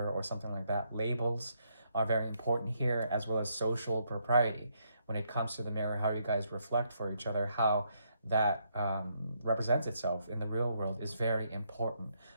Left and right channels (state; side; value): inverted; both; correlation -0.76